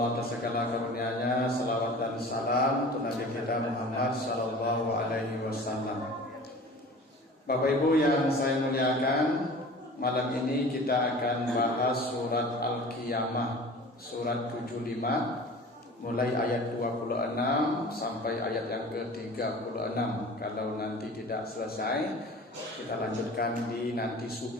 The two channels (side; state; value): both; normal; correlation 0.41